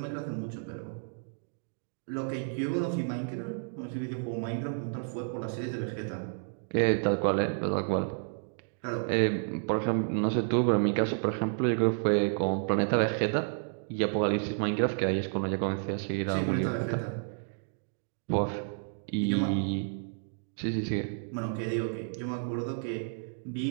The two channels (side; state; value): left; silent; digital silence